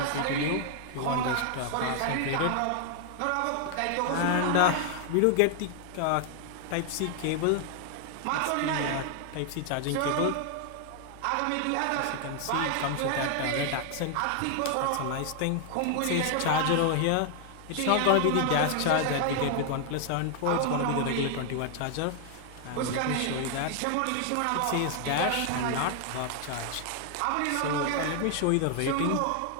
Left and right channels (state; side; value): different; both; correlation 0.00